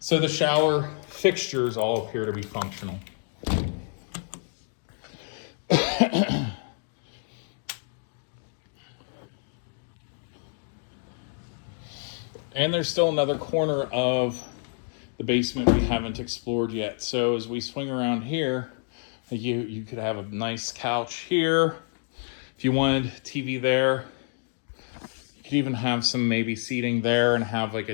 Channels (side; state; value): right; silent; 59 dB below the other